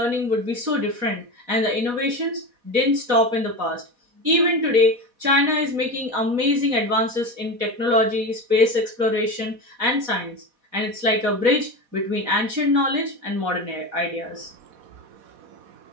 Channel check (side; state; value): left; late; 4.1 ms